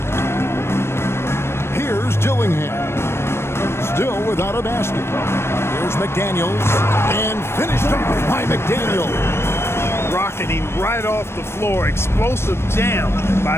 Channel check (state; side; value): late; right; 0.12 ms